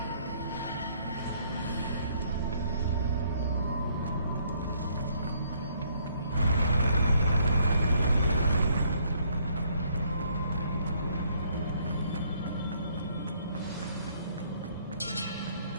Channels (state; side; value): inverted; both; correlation -0.66